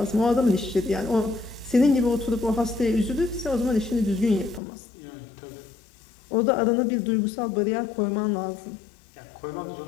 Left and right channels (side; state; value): right; drops out; at 4.6 s